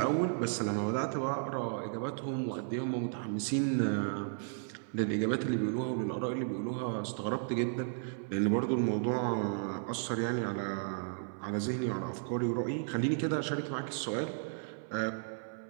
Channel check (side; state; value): left; silent; 55 dB below the other